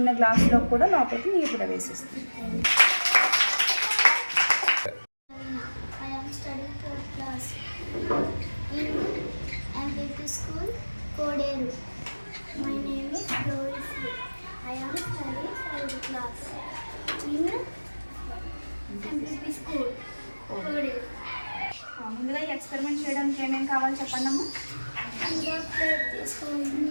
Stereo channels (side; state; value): both; inverted; correlation -1.00